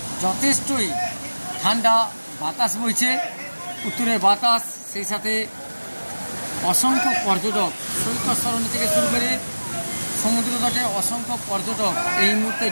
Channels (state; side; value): inverted; both; correlation -1.00